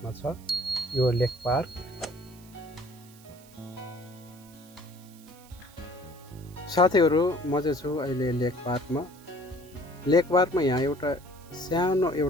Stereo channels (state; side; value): noise; right; hiss, 24 dB below the sound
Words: छ यो लेक पार्क। साथीहरू म चाहिँ छु अहिले लेक पार्कमा। लेक पार्कमा यहाँ एउटा सानो